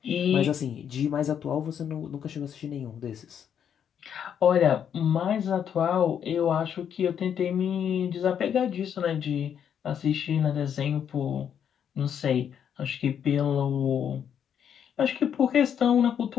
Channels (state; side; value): quieter; right; 8.5 dB